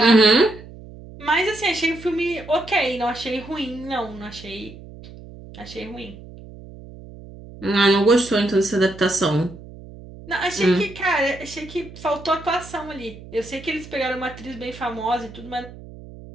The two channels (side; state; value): right; noise; hum, 17 dB below the sound